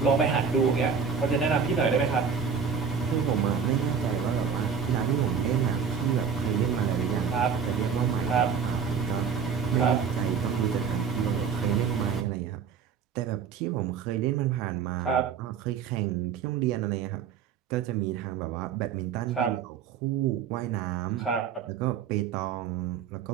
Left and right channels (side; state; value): left; quieter; 6.6 dB